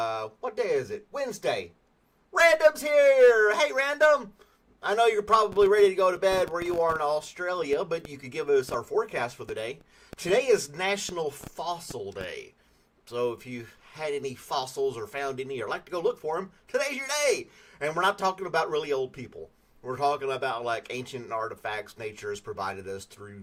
what day is it? Wednesday. Random's here! Hey, Random! I know you're probably ready to go to bed where you are in Australia, but you could give us our forecast for the day. Today is National Fossil Day. So if you had any fossils or found any or like to go look for them, today's your day. And we're not talking about really old people. We're talking about like ancient artifacts nature has provided us through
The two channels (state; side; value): identical; both; correlation 1.00